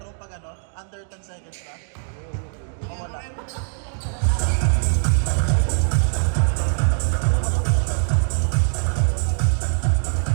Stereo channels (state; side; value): silent; left; 56 dB below the other